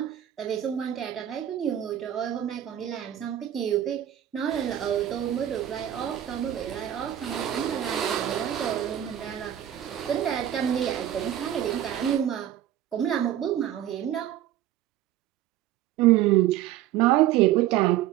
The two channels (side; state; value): left; quieter; 11.7 dB